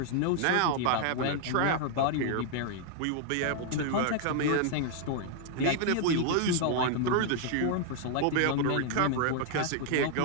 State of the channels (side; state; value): both; different; correlation 0.00